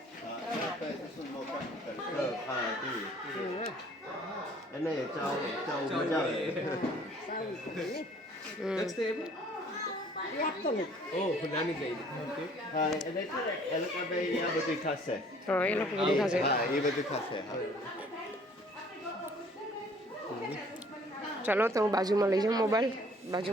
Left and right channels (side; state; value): both; normal; correlation 0.56